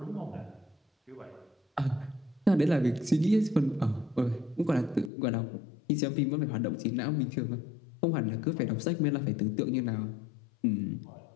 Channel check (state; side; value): drops out; right; at 5.1 s